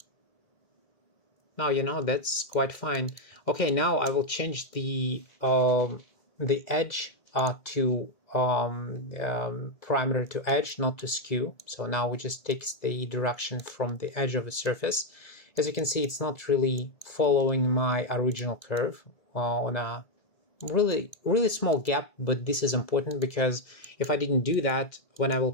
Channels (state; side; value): late; right; 1.9 ms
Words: Now, you know, that's quite fine. Okay, now I will change the edge to parameter to edge, not to skew. So now it just takes the direction from the edge of the surface. As you can see, it's not really following my original curve on a really small gap, but this is important because if I didn't do that, when I will